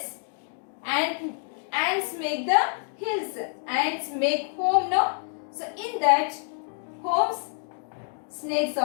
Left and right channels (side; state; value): right; silent; 60 dB below the other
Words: Ants make the hills. Ants make home, no? So in that homes, snakes